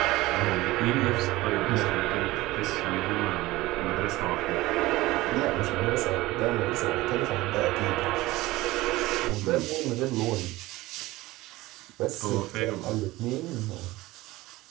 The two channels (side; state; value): left; quieter; 18.8 dB